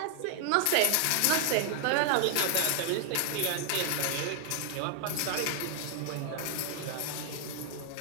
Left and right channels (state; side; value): different; both; correlation 0.00